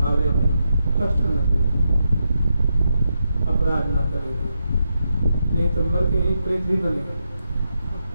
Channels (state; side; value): inverted; both; correlation -0.84